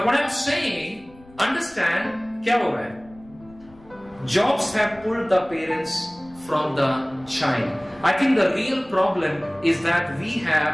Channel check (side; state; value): left; noise; rumble, 24 dB below the sound